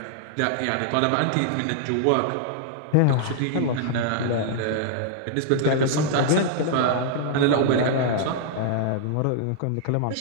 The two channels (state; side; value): different; both; correlation -0.01